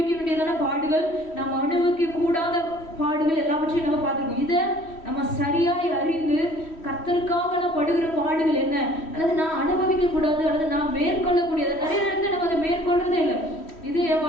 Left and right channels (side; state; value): right; late; 3.1 ms